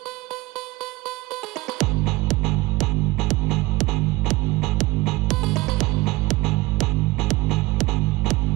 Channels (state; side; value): quieter; left; 21.3 dB